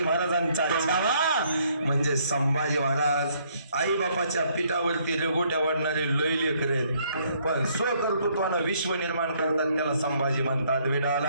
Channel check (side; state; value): both; inverted; correlation -0.67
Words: महाराजांचा छावा म्हणजे संभाजी महाराज. आई बापाच्या पिठावरती रेगोट्या वाढणारे लय लेकर आहेत, पण स्वकर्तृत्वानं विश्व निर्माण करतात त्याला संभाजी म्हणतात. विडाला